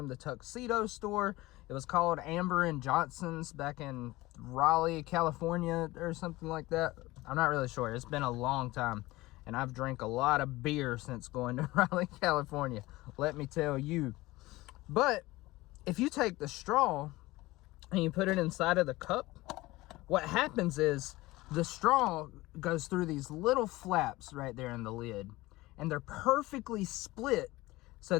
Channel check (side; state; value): right; quieter; 19.5 dB